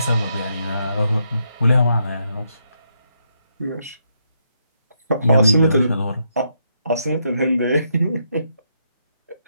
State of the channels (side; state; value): both; inverted; correlation -0.78